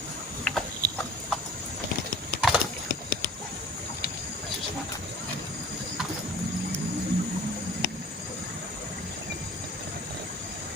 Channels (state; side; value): normal; both; correlation 0.44